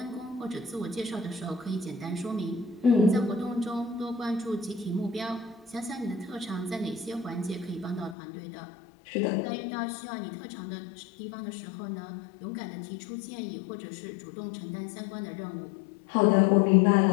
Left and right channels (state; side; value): drops out; right; at 8.2 s